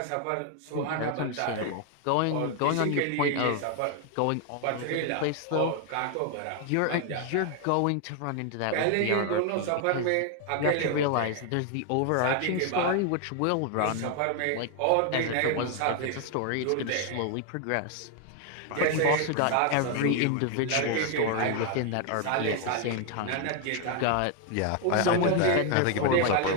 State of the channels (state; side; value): different; both; correlation 0.01